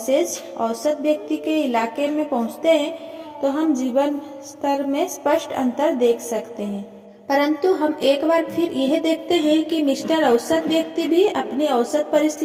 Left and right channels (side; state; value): both; identical; correlation 1.00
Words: औसत व्यक्ति के इलाके में पहुँचते हैं तो हम जीवन स्तर में स्पष्ट अंतर देख सकते हैं। परंतु हम एक बार फिर यह देखते हैं कि मिस्टर औसत व्यक्ति भी अपनी औसत